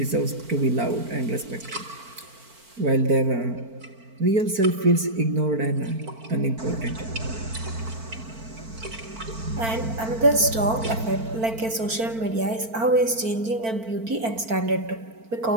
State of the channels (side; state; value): left; late; 4.5 ms